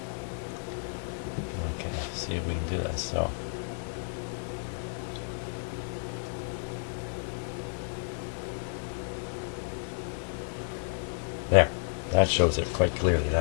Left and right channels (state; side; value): silent; right; digital silence